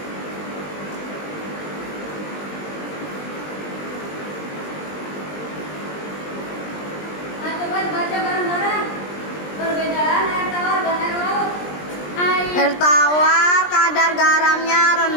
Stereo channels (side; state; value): right; late; 20 ms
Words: Nah, coba baca bareng-bareng perbedaan air tawar dan air laut. Air tawar kadar garamnya